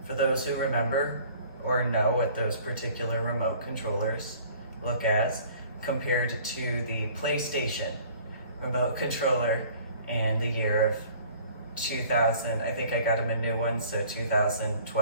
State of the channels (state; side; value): inverted; both; correlation -0.51